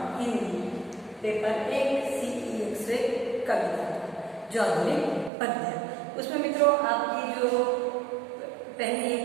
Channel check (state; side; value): drops out; left; at 5.3 s